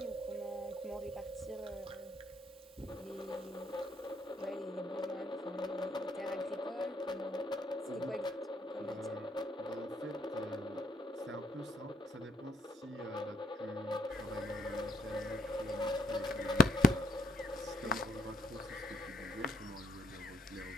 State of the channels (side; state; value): both; normal; correlation 0.71